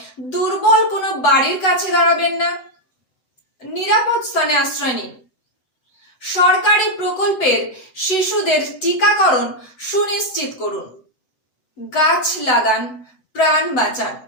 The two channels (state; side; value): late; right; 8.0 ms